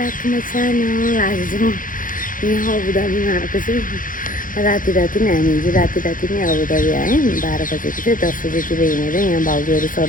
to my channel. आज चाहिँ म यहाँ अबुधाबीमा आएको छु। राति नै हामी चाहिँ राति नै अबुधाबी आयौँ। 12 बजेको थियो, 10 बजेतिर हिँडेर यहाँ भाउजूहरू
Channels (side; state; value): right; late; 0.39 ms